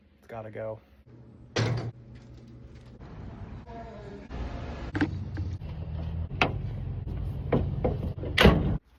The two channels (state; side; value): identical; both; correlation 1.00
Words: It's gotta go.